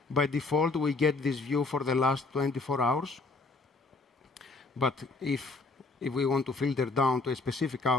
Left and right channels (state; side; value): quieter; right; 3.7 dB